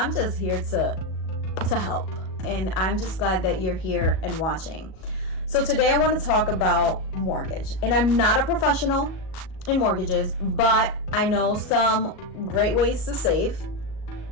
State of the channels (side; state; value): right; late; 37 ms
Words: here to help. And I'm just glad that you're here and watching. So today I want to talk about mortgage. And I'm not a professional in mortgages, but I know some great ways to save